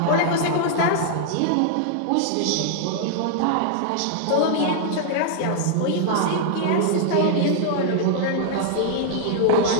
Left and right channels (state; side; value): different; both; correlation -0.01